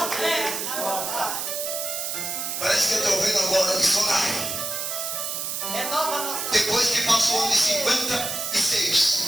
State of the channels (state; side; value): noise; right; hiss, 3 dB below the sound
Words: Parece que eu estou vendo agora o missionário. Renova a nossa. Depois que passou o ano de 56